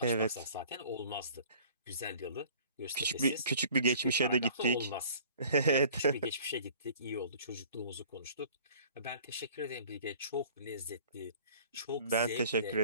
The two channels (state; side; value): inverted; both; correlation -0.50